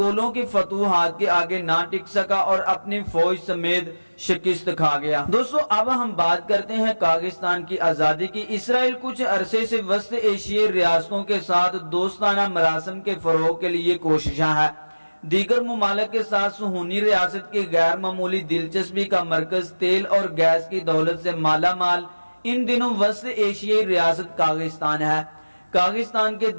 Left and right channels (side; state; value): both; inverted; correlation -1.00